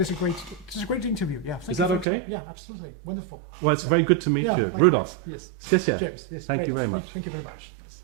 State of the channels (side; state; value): left; drops out; at 2.1 s